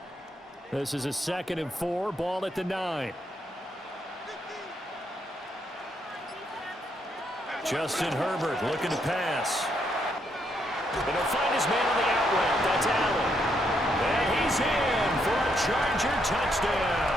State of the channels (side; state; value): both; normal; correlation 0.76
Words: This is a 2nd and 4, ball at the 9. Justin Herbert looking to pass. And he'll find his man on the out route. That's Allen. And he's in for a Charger